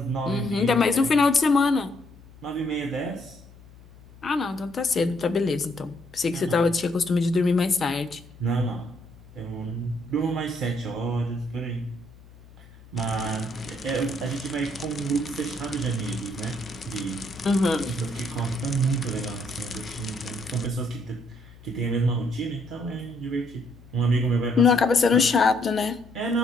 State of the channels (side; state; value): left; noise; hum, 22 dB below the sound